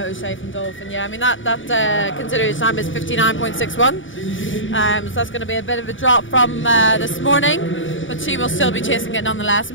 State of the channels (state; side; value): late; right; 0.56 ms